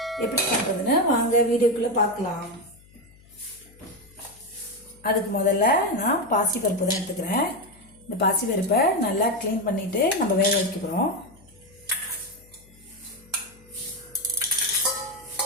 எப்படி பண்ணுறதுன்னு வாங்க வீடியோக்குள்ளே பார்க்கலாம். அதுக்கு முதல்ல நான் பாசிப்பருப்பு தான் எடுத்துக்கிறேன். இந்த பாசிப்பருப்பை நல்லா க்ளீன் பண்ணிவிட்டு நம்ம வேக வைக்க போகிறோம்.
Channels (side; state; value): left; noise; hum, 26 dB below the sound